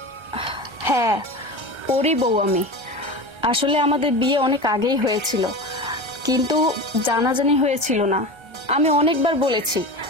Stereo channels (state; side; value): late; left; 1.3 ms